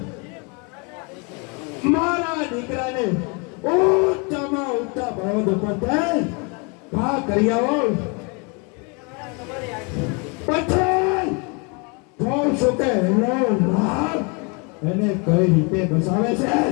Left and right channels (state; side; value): quieter; right; 32.5 dB